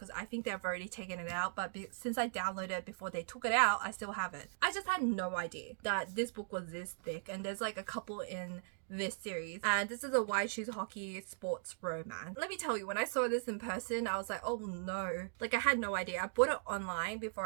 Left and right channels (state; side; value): silent; left; digital silence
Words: I think they've already taken it out, but since I downloaded it before they took it out, I still have it. I just had no idea that this book was this thick, and there's like a couple in this series, and this is a White Shoes Hockey sports romance. Let me tell you, when I saw this in person, I was like, oh no, like I had no idea. I bought it online